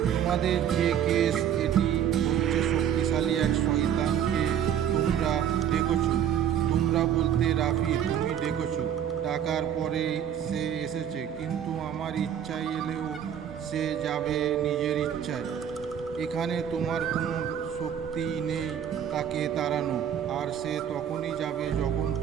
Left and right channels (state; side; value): quieter; left; 9.4 dB